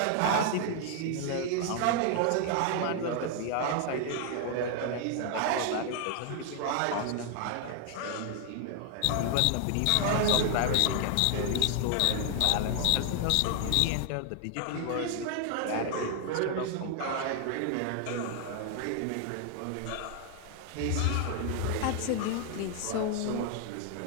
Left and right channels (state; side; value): different; both; correlation 0.00